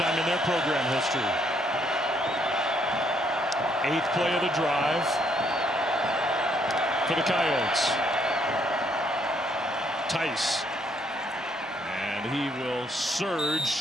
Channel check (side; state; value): both; normal; correlation 0.70